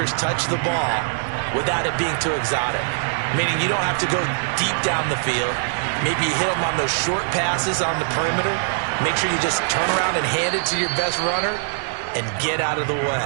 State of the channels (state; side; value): silent; left; digital silence